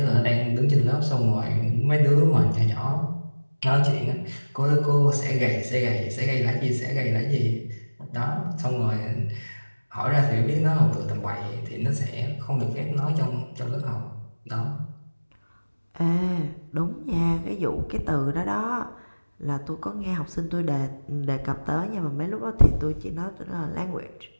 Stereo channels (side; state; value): both; inverted; correlation -1.00